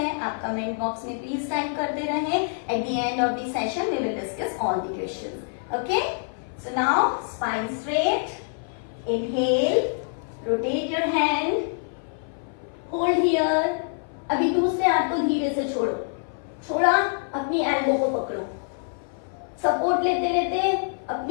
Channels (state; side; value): silent; right; 57 dB below the other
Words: आप कमेंट बॉक्स में प्लीज टाइप करते रहें। At the end of the session we will discuss all the questions. Okay, so now spine straight, inhale, rotate your hand, hold here. अभी दूसरे हाथ को धीरे से छोड़ो, छोड़ा, अपनी एल्बो को पकड़ो, सपोर्ट लेते लेते